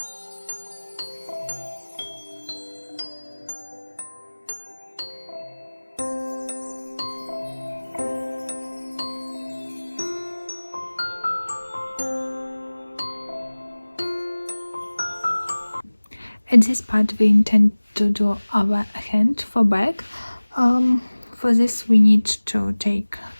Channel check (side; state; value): both; inverted; correlation -1.00